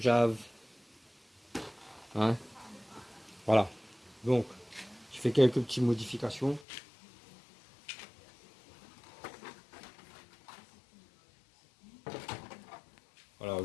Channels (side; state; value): right; drops out; at 6.7 s